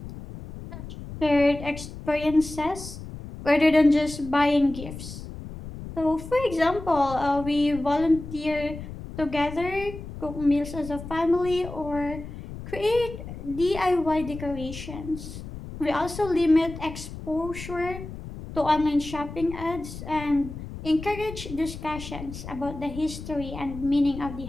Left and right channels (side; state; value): left; noise; rumble, 11 dB below the sound